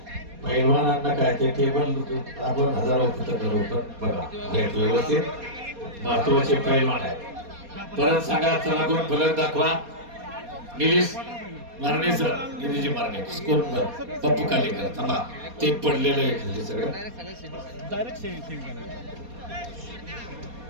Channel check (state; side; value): late; left; 4.2 ms